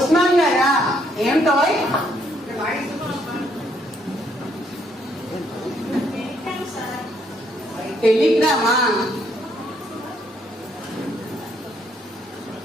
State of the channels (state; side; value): normal; both; correlation 0.71